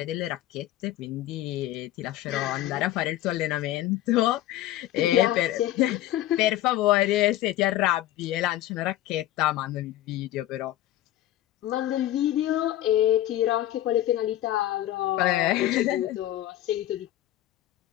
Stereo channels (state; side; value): quieter; right; 13.9 dB